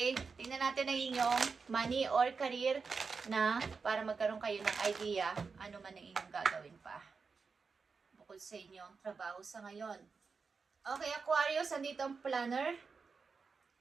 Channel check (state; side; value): quieter; left; 5.0 dB